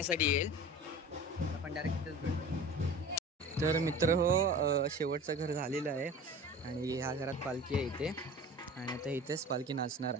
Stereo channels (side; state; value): both; normal; correlation 0.38